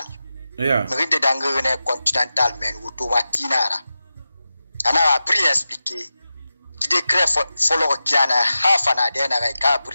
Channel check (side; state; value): both; inverted; correlation -0.93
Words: Yeah. Mrinde dangene continental men automatinara. Ana appris à expliquer. Di décret follow kiana hafana de na ka